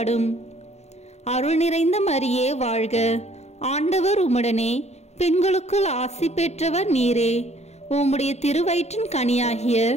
அருள் நிறைந்த மரியே வாழ்க, ஆண்டவர் உம்முடனே, பெண்களுக்குள் ஆசி பெற்றவர் நீரே. உம்முடைய திருவயிற்றின் கனியாகிய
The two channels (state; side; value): late; right; 0.32 ms